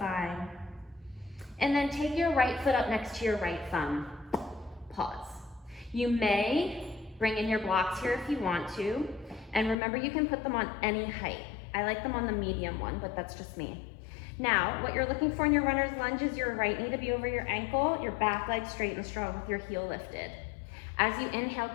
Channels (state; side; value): drops out; right; at 9.8 s